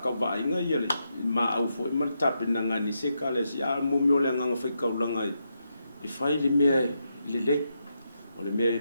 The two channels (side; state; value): both; inverted; correlation -0.83